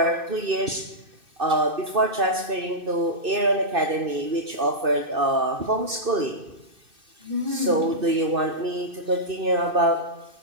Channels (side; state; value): left; late; 2.6 ms